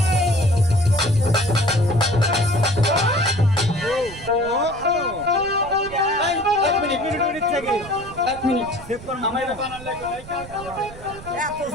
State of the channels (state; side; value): noise; right; rumble, 16 dB below the sound